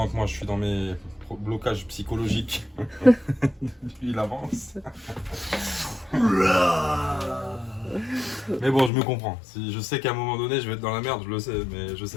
que moi je suis dans mes blocage psychologique. Il avance. Mais bon, je me comprends. Si je sais qu'à un moment donné, je vais être dans la merde, je le sais, mais je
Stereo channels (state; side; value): drops out; right; at 8.9 s